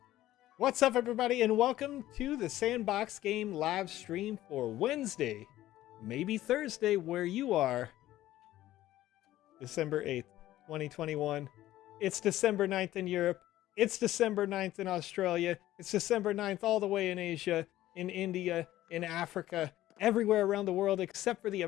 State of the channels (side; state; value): right; quieter; 14.6 dB